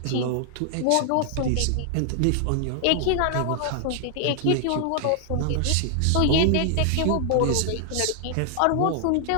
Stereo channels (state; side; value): different; both; correlation 0.00